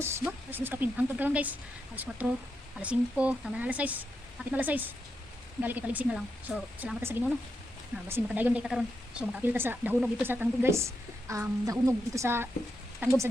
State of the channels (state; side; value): normal; both; correlation 0.84